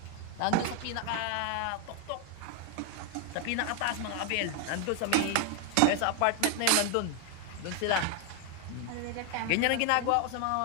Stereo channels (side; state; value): both; different; correlation 0.00